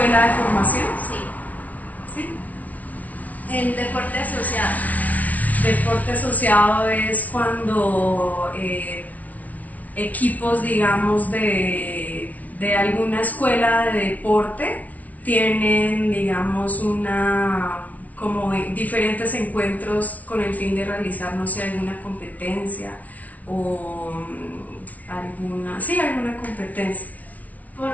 de formación. Sí. ¿Sí? El deporte asociado. Deporte asociado es cuando equipos, digamos, de alguna escuela de deporte tienen, digamos, como diferentes encuentros con el fin de realizar, no sé, alguna competencia o alguna competencia.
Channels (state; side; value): late; right; 0.071 ms